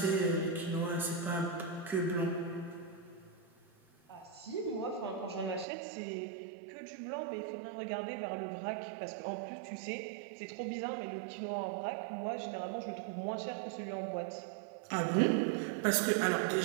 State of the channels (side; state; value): left; drops out; at 5.7 s